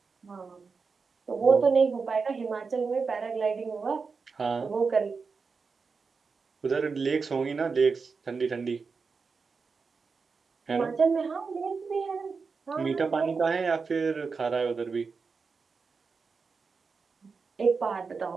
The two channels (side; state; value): left; quieter; 4.9 dB